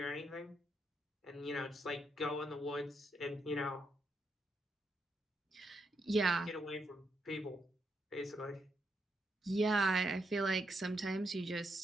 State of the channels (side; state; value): both; normal; correlation 0.80